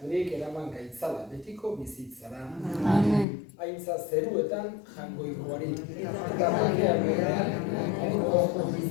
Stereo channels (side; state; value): right; drops out; at 3.2 s